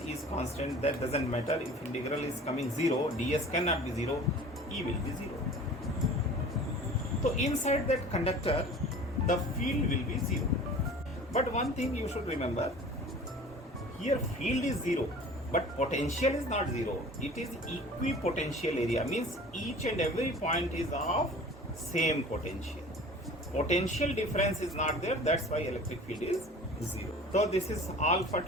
is constant, that doesn't matter. If integral is coming 0, ds cannot be 0, E will be 0. So inside that conductor the field will be 0. But one thing you should remember, here field is 0, but potential is not 0. It is equipotential area, means each and every point is of same potential. Potential difference is not there, that's why electric field is 0. So this is all for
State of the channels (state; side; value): normal; both; correlation 0.42